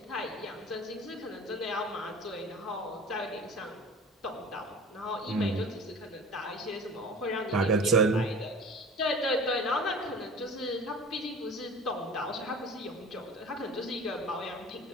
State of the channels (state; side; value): normal; both; correlation 0.41